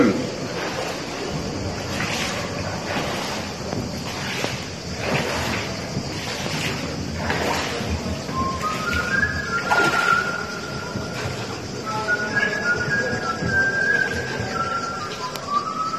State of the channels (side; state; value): both; identical; correlation 1.00